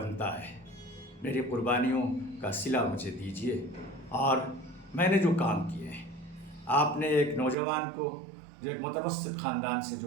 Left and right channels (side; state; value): left; drops out; at 7.6 s